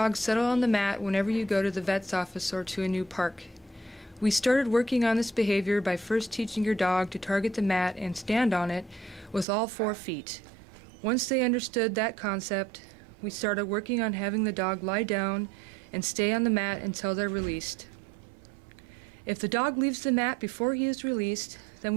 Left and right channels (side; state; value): left; drops out; at 9.5 s